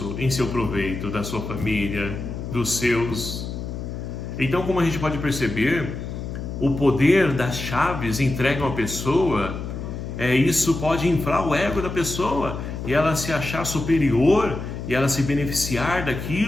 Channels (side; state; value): left; noise; hum, 7 dB below the sound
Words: em seu proveito, da sua família, dos seus. Então, como a gente pode perceber, o poder das chaves entregue a uma pessoa, isso pode inflar o ego da pessoa e ela se achar superior e ela se beneficiar